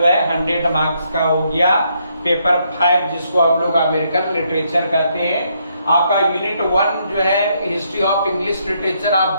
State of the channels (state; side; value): inverted; both; correlation -0.74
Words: है 100 मार्क्स का हो गया पेपर 5, जिसको हम लोग अमेरिकन लिटरेचर कहते हैं। आपका यूनिट 1 जो है हिस्ट्री ऑफ इंग्लिश लिटरेचर,